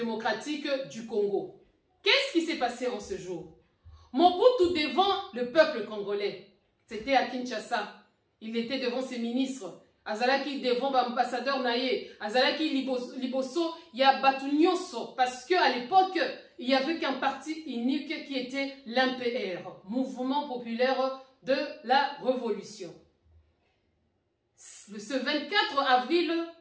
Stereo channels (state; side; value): identical; both; correlation 1.00